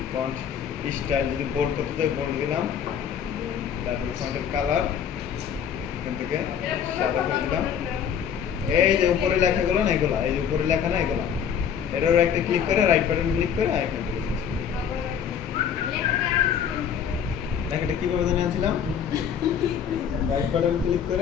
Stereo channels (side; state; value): right; quieter; 8.1 dB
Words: ফন্ট স্টাইল যদি বোল্ড করতে চাই বোল্ড দিলাম, তারপর ফন্টের কালার এখান থেকে সাদা করে দিলাম। এই যে উপরে লেখাগুলো না এগুলা, এই যে উপরে লেখা না এগুলা, এটারও একটা ক্লিক করে রাইট বাটন ক্লিক করে এখান থেকে লেখাটা কিভাবে জানি আনছিলাম? রাইট বাটন ক্লিক